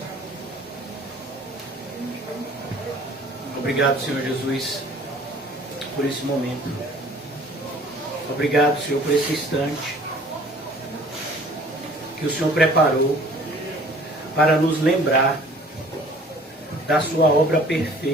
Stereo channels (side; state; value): both; normal; correlation 0.52